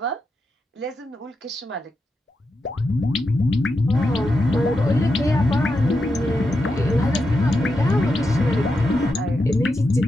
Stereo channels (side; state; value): both; normal; correlation 0.87